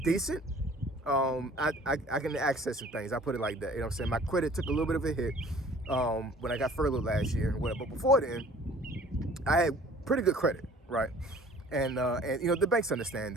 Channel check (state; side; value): normal; both; correlation 0.50